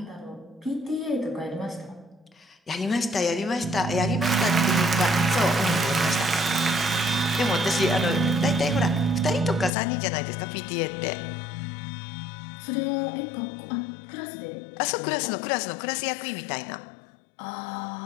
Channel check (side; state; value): right; drops out; at 9.7 s